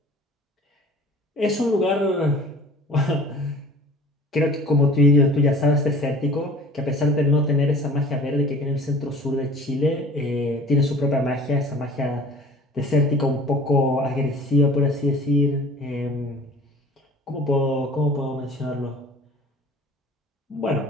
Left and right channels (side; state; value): both; normal; correlation 0.46